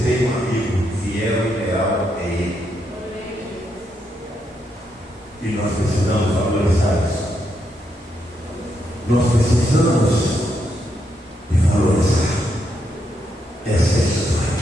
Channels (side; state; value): both; normal; correlation 0.79